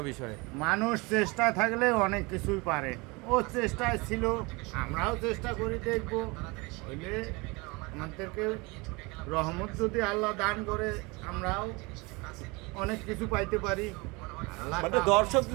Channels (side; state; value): left; quieter; 26.2 dB